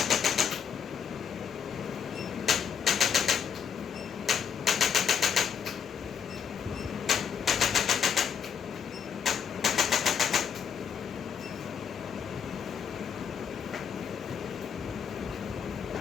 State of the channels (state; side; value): quieter; right; 7.4 dB